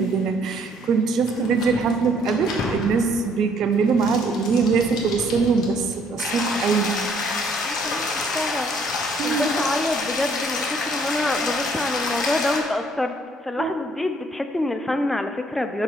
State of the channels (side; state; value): both; normal; correlation 0.64